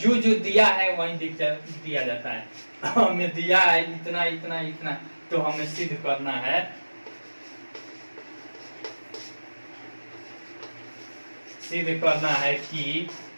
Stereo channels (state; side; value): inverted; both; correlation -1.00